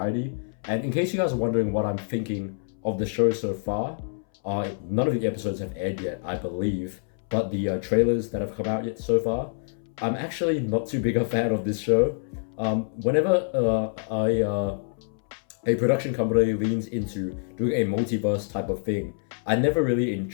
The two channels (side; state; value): right; silent; 61 dB below the other